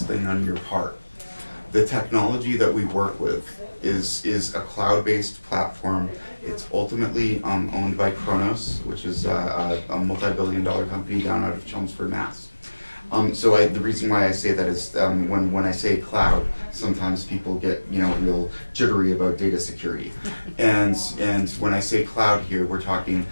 thing on your part. The technology that we work with is a cloud-based platform. It's ultimately owned by Kronos, which is a multi-billion-dollar company down out of Chelmsford, Mass. The reason why I say that is when I say cloud, sometimes people get real jittery about data security, and when I say cloud here, we're talking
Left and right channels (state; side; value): inverted; both; correlation -1.00